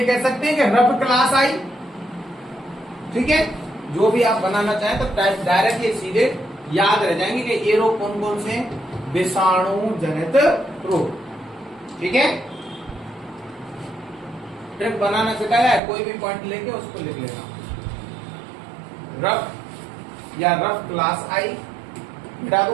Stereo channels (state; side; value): drops out; left; at 15.8 s